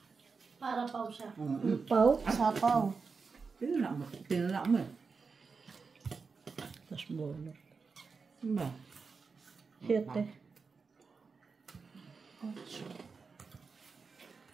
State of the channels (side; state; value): left; quieter; 4.9 dB